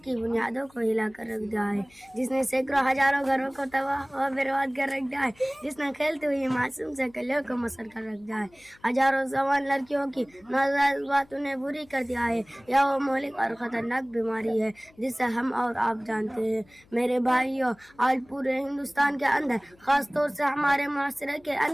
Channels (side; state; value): left; noise; hum, 29 dB below the sound